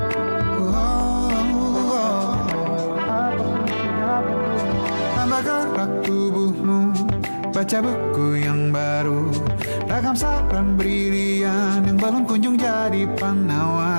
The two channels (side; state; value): both; inverted; correlation -1.00